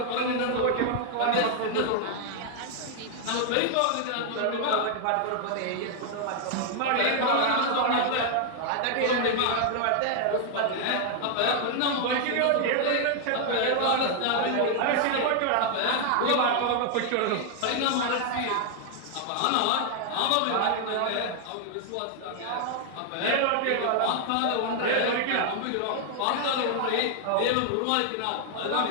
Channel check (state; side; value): different; both; correlation 0.00